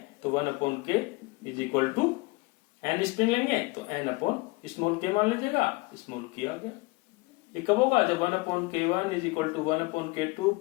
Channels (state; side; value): quieter; right; 24.7 dB